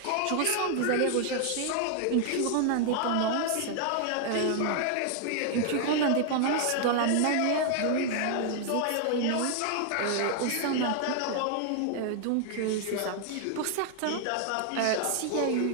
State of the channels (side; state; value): both; different; correlation 0.00